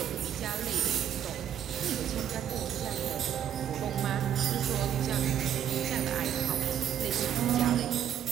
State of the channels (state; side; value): quieter; left; 9.7 dB